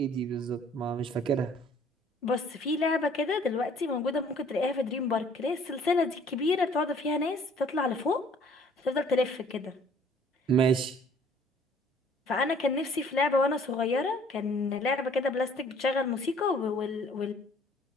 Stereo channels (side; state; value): both; normal; correlation 0.56